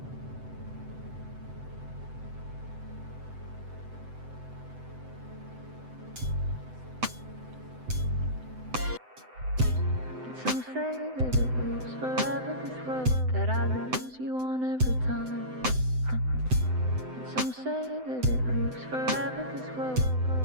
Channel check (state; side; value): late; left; 7.8 ms